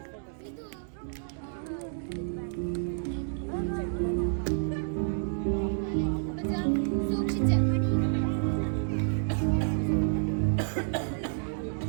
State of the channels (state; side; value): silent; left; digital silence